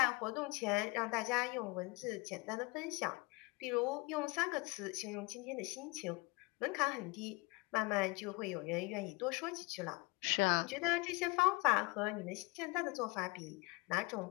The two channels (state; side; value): quieter; right; 25.3 dB